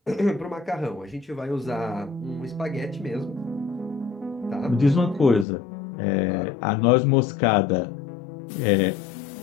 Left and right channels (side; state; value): right; drops out; at 5.5 s